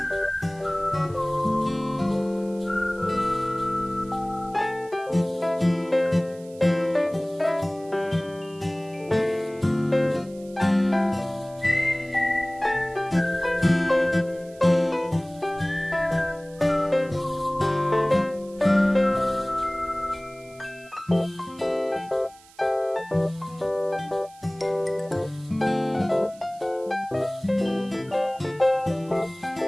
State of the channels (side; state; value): right; noise; hiss, 25 dB below the sound